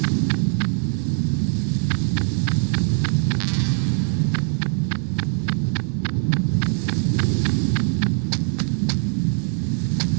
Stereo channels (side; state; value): left; silent; 64 dB below the other